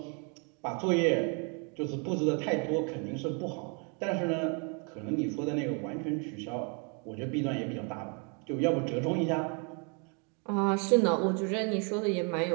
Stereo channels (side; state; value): left; quieter; 36.6 dB